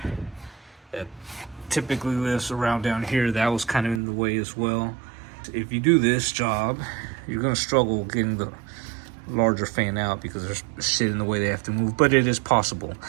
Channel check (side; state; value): left; drops out; at 4.0 s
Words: that typically lives around down here. That was kind of in the way as well. If you do this job, you're gonna struggle getting the larger fan out because there's shit in the way they have to move, but it is possible